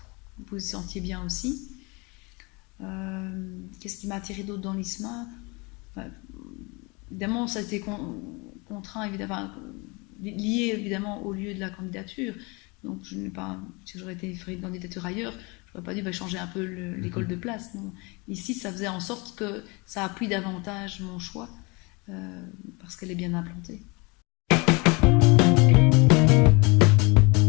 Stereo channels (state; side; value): quieter; right; 28.1 dB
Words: vous vous sentiez bien aussi. Qu'est-ce qui m'a attiré d'autre dans l'ISMA ? Évidemment, ça a été contraint, évidemment, lié évidemment au lieu de la candidature. Donc, si j'aurais été fait une candidature ailleurs, je n'aurais pas dû changer un peu l'école de place. Non. Ici, ça faisait en sorte que ça appuie davantage mon choix parce qu'elle est bien implantée.